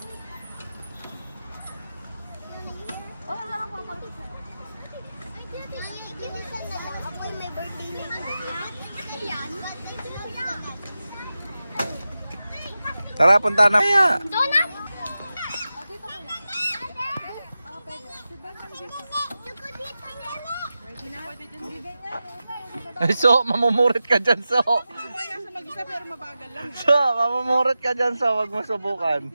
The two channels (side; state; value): both; inverted; correlation -0.93